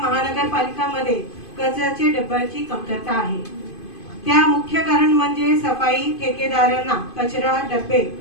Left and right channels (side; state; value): right; late; 2.5 ms